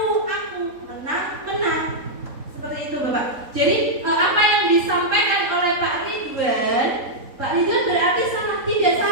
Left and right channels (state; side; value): late; left; 3.8 ms